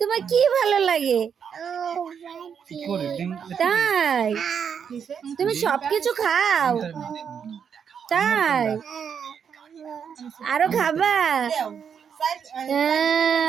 কি ভালো লাগে? তাই তুমি সবকিছু খাও? তাই আরো খাবা?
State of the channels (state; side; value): quieter; left; 7.3 dB